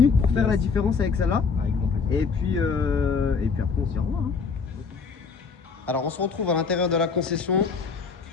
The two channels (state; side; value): quieter; right; 5.2 dB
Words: pour faire Yes. la différence avec celle-là. Avec grand plaisir. Et puis après, on se dit au revoir. Hein. Alors, on se retrouve à l'intérieur de la concession.